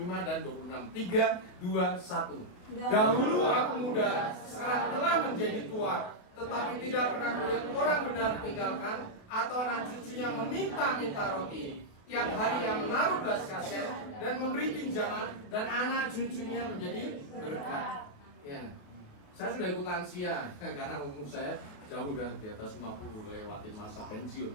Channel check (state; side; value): late; right; 28 ms